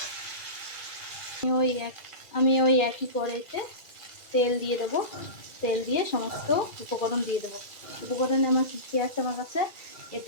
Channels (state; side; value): late; right; 2.4 ms